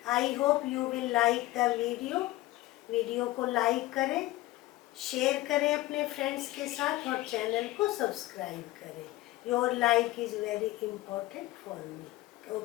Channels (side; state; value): right; quieter; 17.7 dB